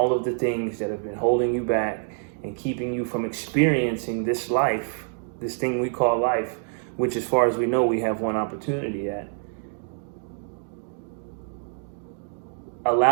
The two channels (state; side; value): silent; left; digital silence